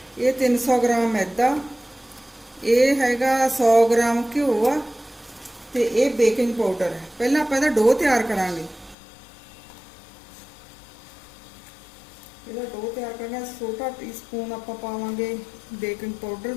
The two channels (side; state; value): right; drops out; at 9.0 s